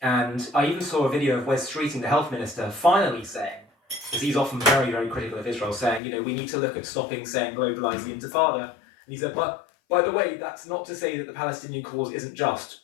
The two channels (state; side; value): drops out; right; at 6.0 s